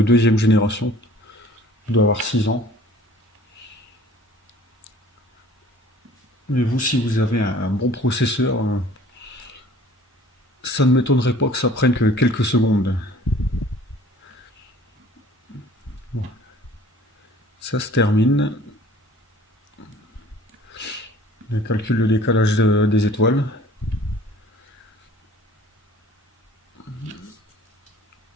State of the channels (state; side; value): normal; both; correlation 0.51